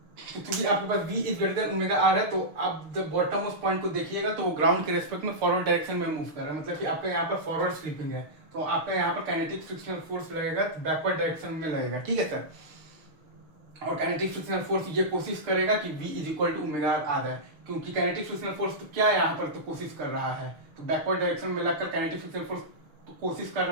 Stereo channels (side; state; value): left; late; 6.6 ms